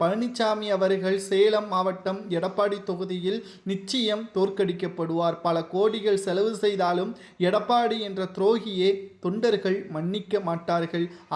பழனிசாமி அவர்கள் சேலம் மாவட்டம் எடப்பாடி தொகுதியில் நிச்சயம் தோற்கடிக்கப்படுவார். பல கோடிகள் செலவு செய்தாலும் எடப்பாடி என்ற துரோகியை தொண்டர்கள் மன்னிக்க மாட்டார்கள்.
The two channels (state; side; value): identical; both; correlation 1.00